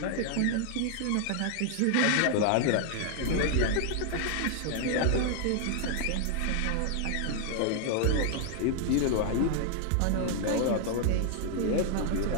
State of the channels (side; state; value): both; different; correlation 0.00